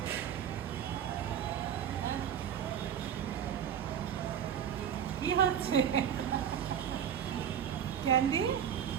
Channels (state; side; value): quieter; left; 8.9 dB